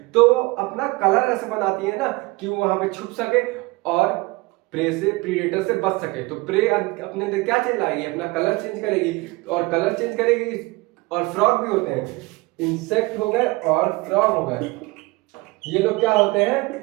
तो वो अपना कलर ऐसे बनाती है ना कि वो वहां पे छुप सके और प्रे से प्रीडेटर से बच सके। तो प्रे अपने अंदर क्या चेंज लाएगी, अपना कलर चेंज करेगी, और कलर चेंज करेगी। और फ्रॉग भी होते हैं, इंसेक्ट हो गए और फ्रॉग हो गए, ये लोग क्या होते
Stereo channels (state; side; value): quieter; left; 23.6 dB